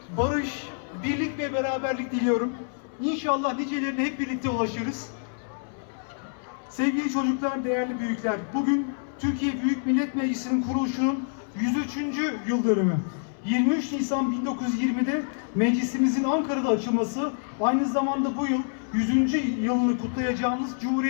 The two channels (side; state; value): right; silent; 60 dB below the other